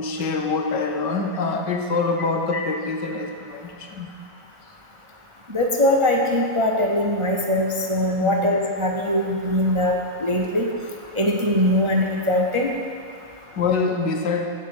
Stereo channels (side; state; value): left; late; 1.4 ms